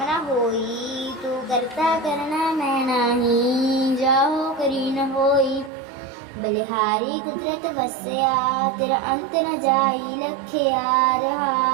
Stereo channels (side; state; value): left; drops out; at 5.7 s